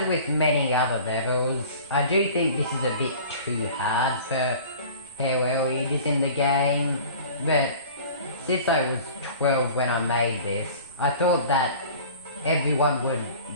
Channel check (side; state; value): both; inverted; correlation -0.43